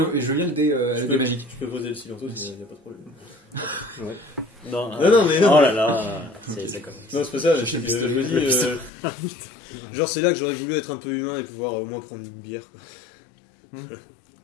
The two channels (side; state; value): right; drops out; at 8.9 s